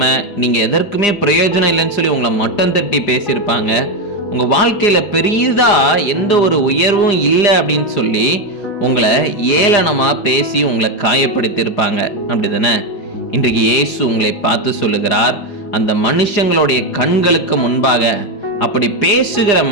நீங்க எதற்குமே பிரயோஜனம் இல்லைன்னு சொல்லி உங்களை மட்டம் தட்டி பேசியிருப்பாங்க. உங்க வாழ்க்கையில பெரியதா எந்த ஒரு உயர்வும் இல்லை அப்படின்னு சொல்லி உங்களை ஏளனமா பேசி உங்களை காயப்படுத்தியிருப்பாங்க, அப்படிதானே? இன்றைக்கு இயேசு உங்களை பார்த்து சொல்லுகிறார், அந்த மனுஷங்களுடைய கண்களுக்கு முன்பாக, அப்படி பேசுகிற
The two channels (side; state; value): right; late; 4.9 ms